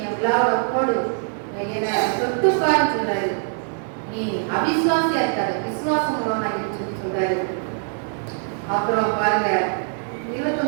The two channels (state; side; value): silent; left; 64 dB below the other